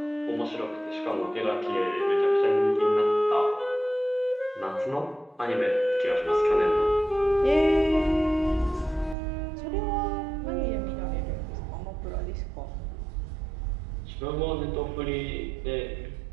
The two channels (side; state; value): left; drops out; at 9.2 s